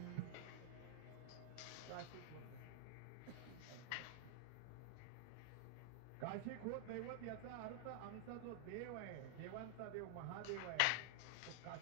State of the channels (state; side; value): different; both; correlation 0.00